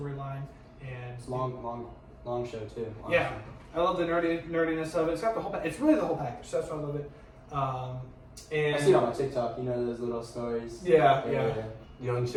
and It's long show too. Honestly. yeah, I love the nerdiness of it. It's got the whole. It's really the whole package. So that's why I love it. And I see it on my TikTok. You know those little stories. Yeah. Young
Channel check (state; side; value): identical; both; correlation 1.00